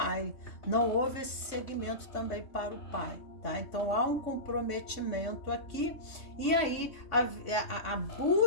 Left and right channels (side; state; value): right; late; 3.5 ms